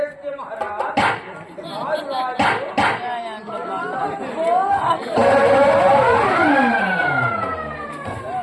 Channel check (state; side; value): identical; both; correlation 1.00